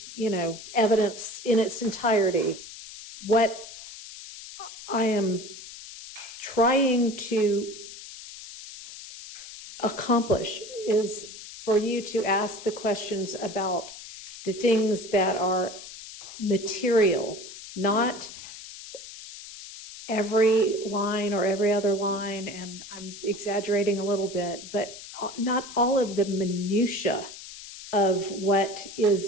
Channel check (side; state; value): left; noise; hiss, 14 dB below the sound